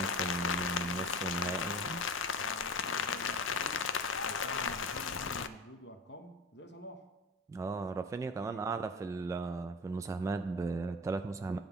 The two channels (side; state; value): both; normal; correlation 0.34